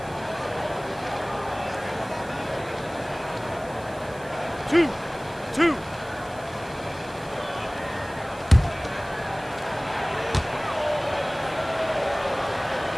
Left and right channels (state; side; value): noise; right; hiss, 22 dB below the sound